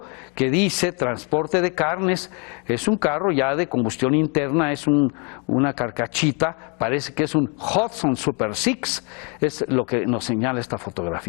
que dice transporte de carnes. Es un carro ya de combustión interna, es una carcachita, parece que es un Hudson Super 6, es lo que nos señala esta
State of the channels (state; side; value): quieter; right; 34.6 dB